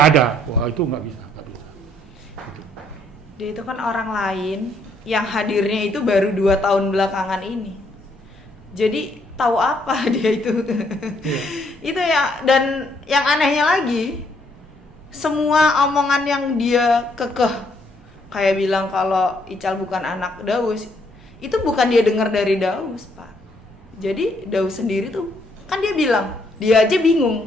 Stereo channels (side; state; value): both; normal; correlation 0.70